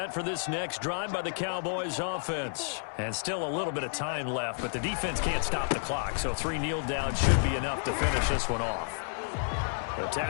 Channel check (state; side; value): silent; right; 57 dB below the other